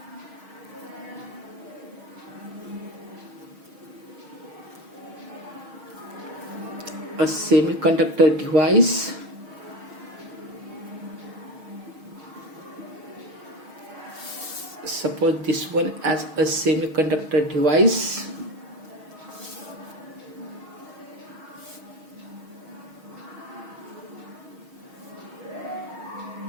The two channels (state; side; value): late; left; 6.4 ms